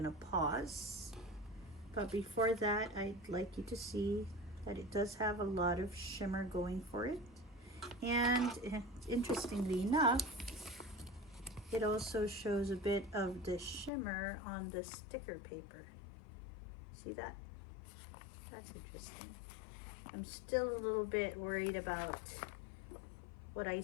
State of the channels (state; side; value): drops out; right; at 13.9 s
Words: pause. But before that, I'd like you to see that it does have a lot of shimmer going for it. And interestingly enough, it also shows a bit of the shimmer on the sticker paper. See that? That's interesting. I'm still a little bit worried about what I